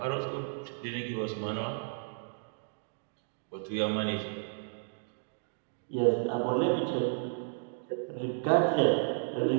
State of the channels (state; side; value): silent; left; digital silence